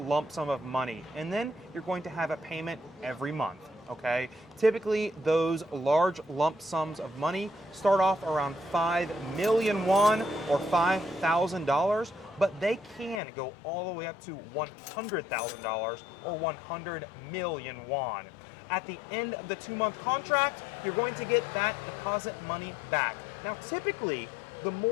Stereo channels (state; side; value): drops out; right; at 13.2 s